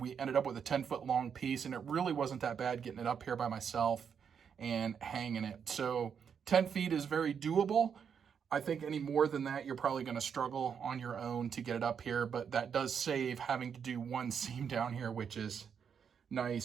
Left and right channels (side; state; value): left; quieter; 7.2 dB